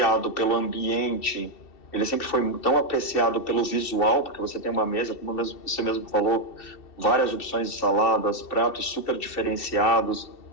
pelo ambiente, ele sempre foi tão apreciado pelo visual, porque você tem uma mesa, como você mesmo falou, várias opções de saladas, pratos super diferenciados,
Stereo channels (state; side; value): late; right; 2.7 ms